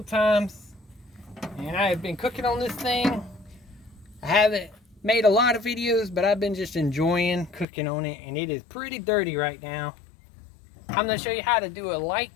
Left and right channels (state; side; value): drops out; right; at 7.7 s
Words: times and I have been cooking on this thing. I haven't made a lot of videos, but I've been just enjoying cooking on it, and it is pretty dirty right now. I'm going to show you how to do a light